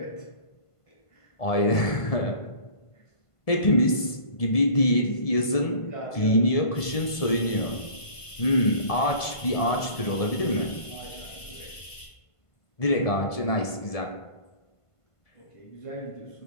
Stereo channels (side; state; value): right; late; 1.5 ms